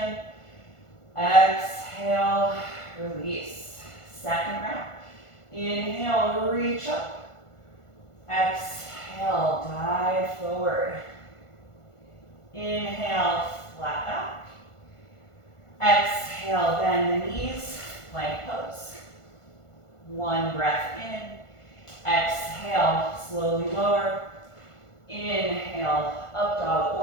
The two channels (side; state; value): right; late; 1.5 ms